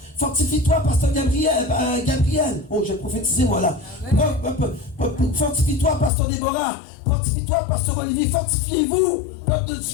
Fortifie-toi, Pasteur Gabriel. Oh, j'ai prophétisé, moi là. Fortifie-toi, Pasteur Déborah. Fortifie-toi, Pasteur Olivier. Fortifiez-vous, peuple de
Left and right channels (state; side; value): drops out; right; at 6.1 s